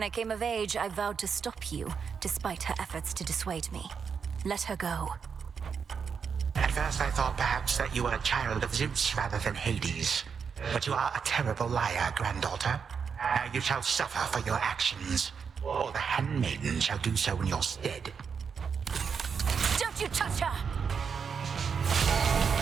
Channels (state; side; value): quieter; left; 6.3 dB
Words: I came of age, I vowed to stop you, despite her efforts to dissuade me. Let her go. At first I thought perhaps that you were a child of Zeus rather than Hades. But you are a terrible liar, granddaughter. Now you shall suffer for your actions, or the handmaiden shall do so in your stead. Don't you touch her!